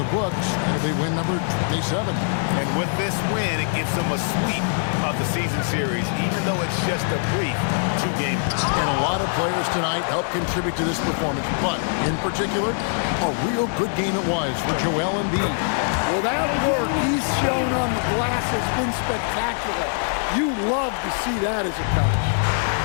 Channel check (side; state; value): right; silent; digital silence